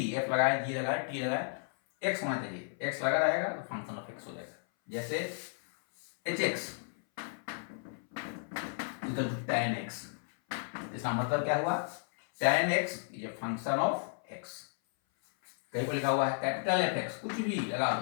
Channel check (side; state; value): right; silent; 55 dB below the other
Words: f लगाए, g लगाए, t लगाए, x होना चाहिए। x लगा रहेगा तो फंक्शन ऑफ x हो जाएगा। जैसे hx equal to tan x, इसका मतलब क्या हुआ? tan x is a function of x। कहीं पर लिखा हुआ है कैपिटल fx, कुछ भी लगा